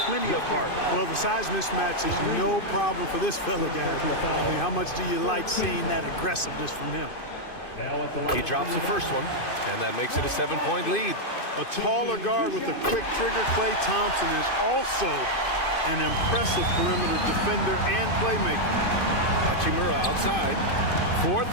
plenty of heart. Well, the size mismatch is no problem for this fella, guys. I mean, how much do you like seeing that aggressiveness from him? He drops the first one, and that makes it a 7-point lead. A taller guard with a quick trigger, Klay Thompson, is also an impressive perimeter defender and playmaker. Hachimura outside.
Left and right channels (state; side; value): late; right; 2.5 ms